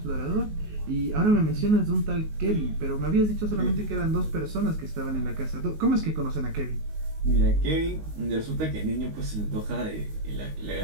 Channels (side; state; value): left; late; 19 ms